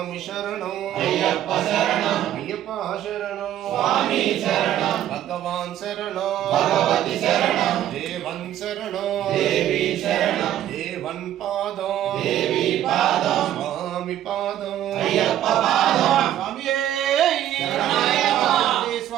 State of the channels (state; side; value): quieter; left; 11.8 dB